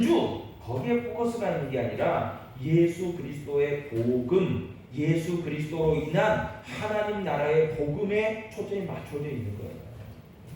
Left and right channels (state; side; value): identical; both; correlation 1.00